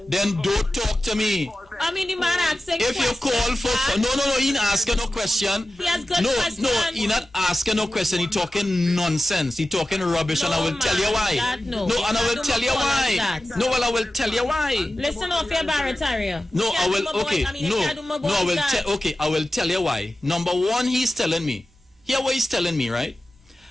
then don't talk to me. I mean, the man asking if you call for no, he ain't asking no question. He has good questions. No, he not asking no question. He talking nonsense. He talking rubbish, and I will tell you why. And I will tell you why. No, well, I will tell you why. Listen off your Barataria. No, I will. Okay, I will. Okay, I will tell you why. Number one, he's telling me. Hear what he's telling me, right?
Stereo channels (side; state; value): both; normal; correlation 0.94